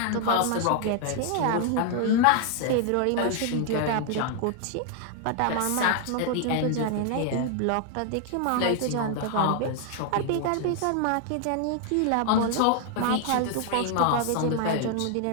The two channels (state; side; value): different; both; correlation 0.00